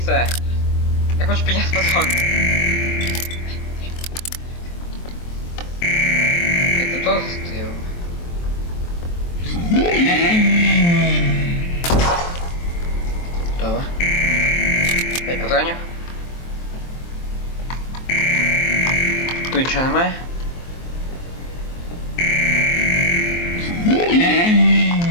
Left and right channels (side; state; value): right; late; 23 ms